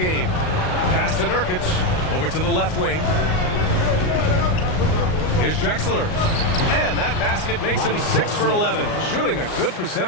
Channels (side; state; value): right; late; 38 ms